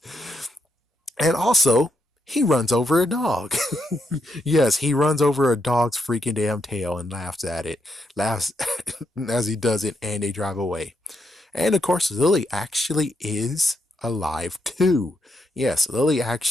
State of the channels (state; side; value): normal; both; correlation 0.81